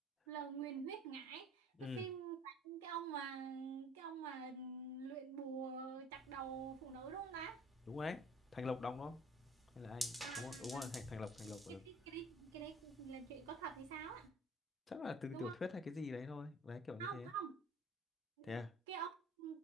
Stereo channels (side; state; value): both; normal; correlation 0.51